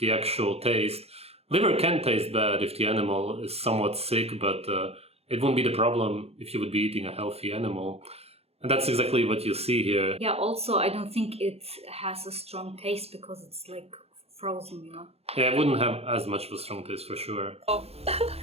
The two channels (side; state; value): left; late; 0.29 ms